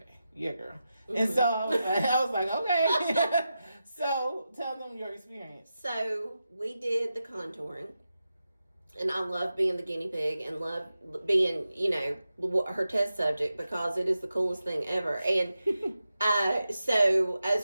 yeah, girl. Mm-hmm. And so I was like, okay. So tell them your experience. So we did the contouring. And I love being the guinea pig and love being, her test subject because it is the coolest thing ever. And so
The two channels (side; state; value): both; inverted; correlation -0.90